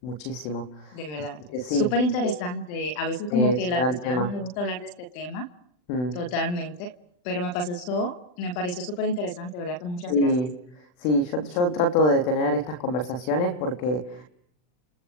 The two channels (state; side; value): late; right; 40 ms